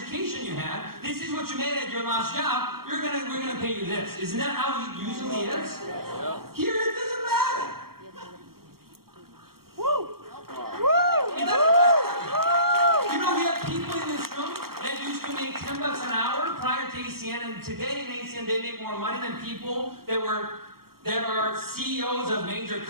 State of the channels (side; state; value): left; late; 0.94 ms